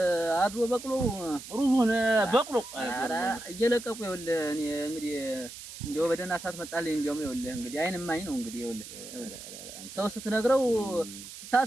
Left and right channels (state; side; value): noise; right; hiss, 13 dB below the sound